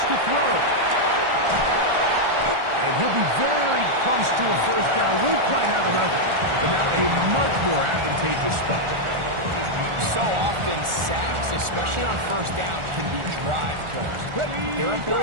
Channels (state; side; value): late; left; 1.4 ms